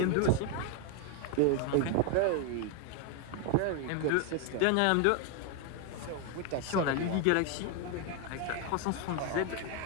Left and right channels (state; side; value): different; both; correlation 0.01